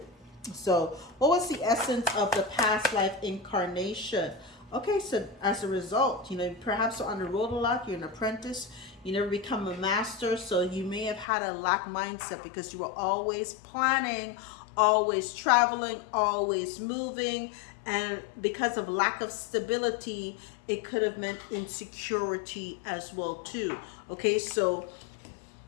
So what was the essence of the past life incarnation? Okay, so as a result, perhaps you're on the road a lot, you're an apprentice, you never become a master, so you may have had a lack mindset because you were always planning, always traveling, always moving, and because of lack of stability, it could have meant insecurity as well too. Okay, so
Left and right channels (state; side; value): drops out; right; at 11.2 s